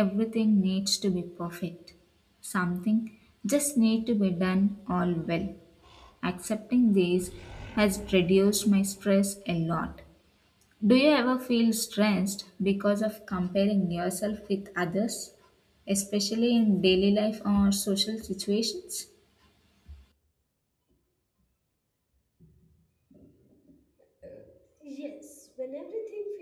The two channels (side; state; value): both; identical; correlation 1.00